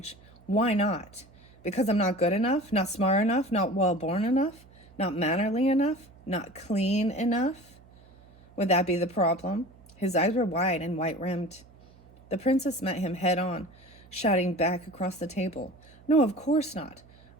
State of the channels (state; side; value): noise; right; hum, 26 dB below the sound